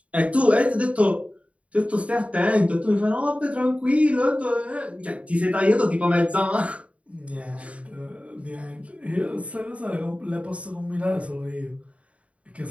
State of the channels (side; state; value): left; late; 0.064 ms